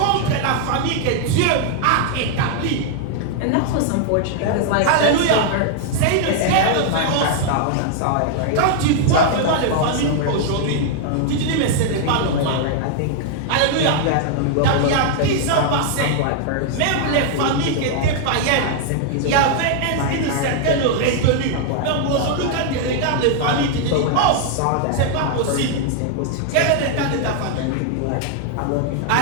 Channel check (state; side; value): different; both; correlation 0.00